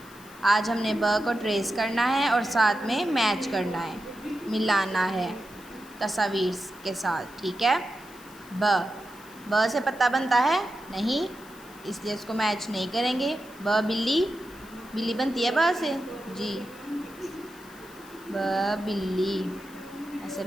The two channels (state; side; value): noise; left; hiss, 23 dB below the sound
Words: आज हमने ब को ट्रेस करना है और साथ में मैच करना है, मिलाना है तस्वीर के साथ। ठीक है। ब से पत्ता बनता है नहीं, इसलिए उसको मैच नहीं करेंगे। ब बिल्ली, बिल्ली बनती है ब से जी। ब बिल्ली, ऐसे